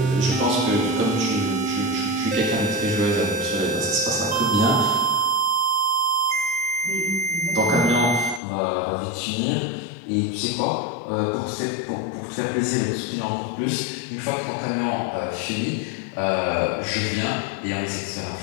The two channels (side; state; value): right; drops out; at 8.4 s